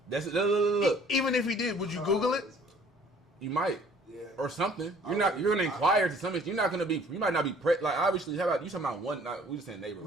That's look. Even if he did, would you Google it? You might. Yeah. Or something. You're gonna inquire to some extent. You're not gonna be. You might not be like obviously. How about you talking about one? We just saying neighbor,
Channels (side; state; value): both; normal; correlation 0.56